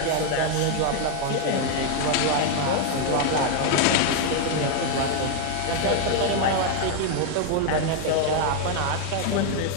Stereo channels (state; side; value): different; both; correlation 0.00